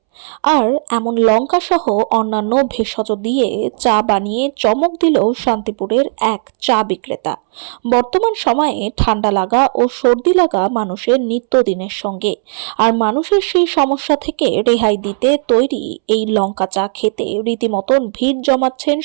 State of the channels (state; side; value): silent; left; 69 dB below the other